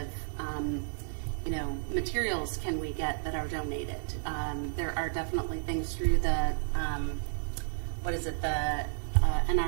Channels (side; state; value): left; silent; 57 dB below the other